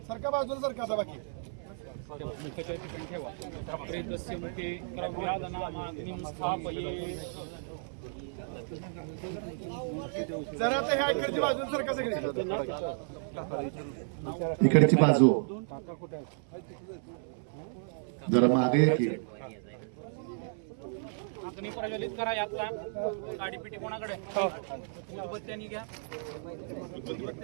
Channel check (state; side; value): silent; left; 56 dB below the other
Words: सरका बाजूला सरका आता बाकी मुख्याच्या ठिकाणी ठेवा प्रेतस्य मुखे क्रव्यादनामाग्निं स्थापये जरा आता ह्या इकडची बाजूला सरका सगळी इकडची बाजू जरा मागे ये की अग्नी प्रज्वलित करा यातला काडीपिटी कोणाकडे उदबत्त्यानी घ्या